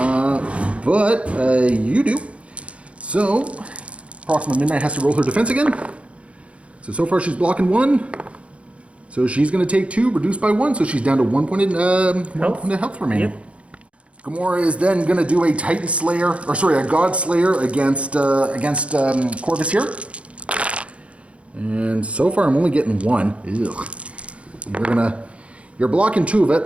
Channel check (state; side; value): late; left; 0.062 ms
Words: you do. So Proxima Midnight has to roll her defense again. So far she's blocking 1. So she's going to take 2, reduced by 1, so she's down to 1 point of health remaining. Yep. Gamora is then going to do a Titan Slayer, or sorry, a God Slayer against Corvus here. And so far I'm only getting 1. Ugh. You're blocking 2 of